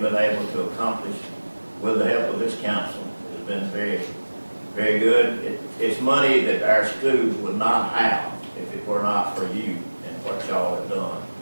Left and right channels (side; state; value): both; inverted; correlation -1.00